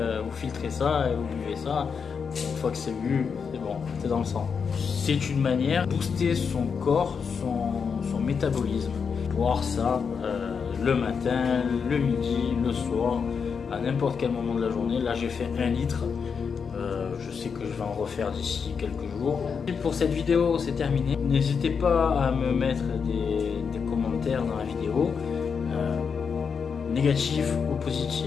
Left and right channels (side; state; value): right; quieter; 6.1 dB